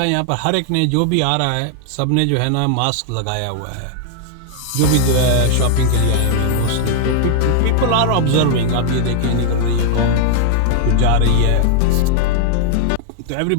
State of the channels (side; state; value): both; different; correlation -0.01